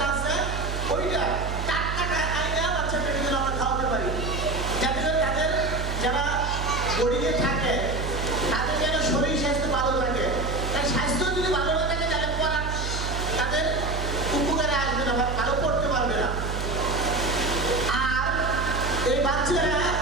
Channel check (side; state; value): right; noise; hum, 4 dB below the sound